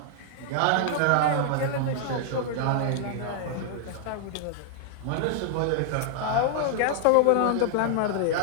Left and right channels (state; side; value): different; both; correlation -0.01